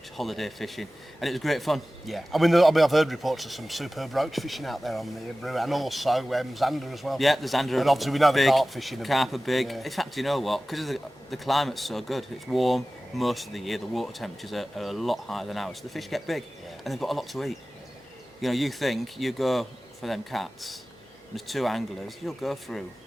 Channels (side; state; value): both; normal; correlation 0.97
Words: Holiday fishing, and it was great fun. Yeah, I mean, I've heard reports of some superb roach fishing out there on the Hebrew, and also Zander as well. Yeah, the Zander. And obviously we know big, the carp fishing. Carp are big. Yeah. In fact, you know what? Because the climate's so good, it's warm most of the year. The water temperatures are a lot higher than ours, so the fish get big, and they've got a lot to eat. You think you go for them cats. There's 2 anglers. You'll go through.